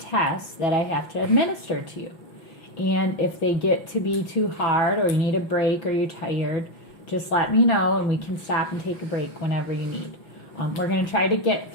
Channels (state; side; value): late; right; 6.1 ms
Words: that I have to administer to you. And if they get to be too hard or you need a break or you're tired, just let me know and we can stop and take a break whenever you need. We're going to try to get